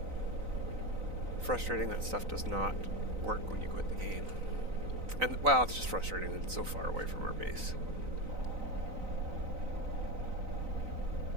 Frustrating that stuff does not work when you quit the game. And, well, it's just frustrating that it's so far away from our base.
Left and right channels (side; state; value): left; late; 3.9 ms